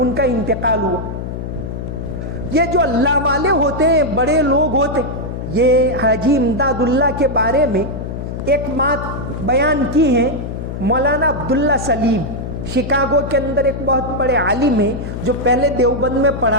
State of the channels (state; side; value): noise; left; hum, 6 dB below the sound